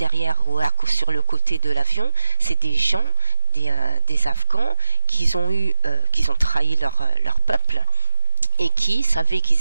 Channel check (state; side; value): inverted; both; correlation -0.99